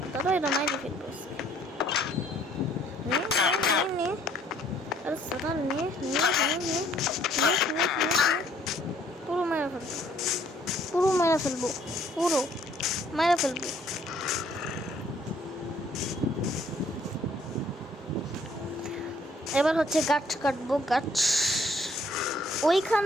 দাদা, এটা মাইরে ফেলবো। আরে সাদা নে পুরো মারা ফেলবো, পুরো মারা ফেলবো, পুরো মারা ফেলবো। এবার হচ্ছে গাছ কাটবো, গাছ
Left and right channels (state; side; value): normal; both; correlation 0.62